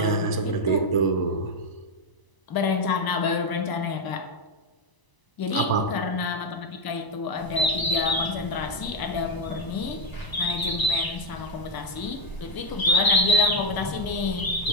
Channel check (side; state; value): right; late; 1.0 ms